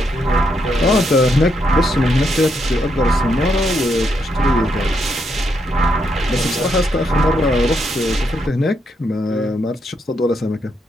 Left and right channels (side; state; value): both; normal; correlation 0.78